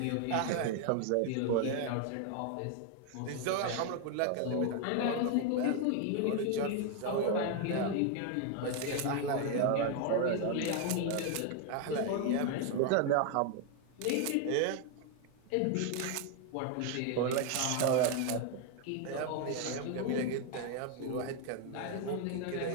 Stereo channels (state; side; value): different; both; correlation 0.01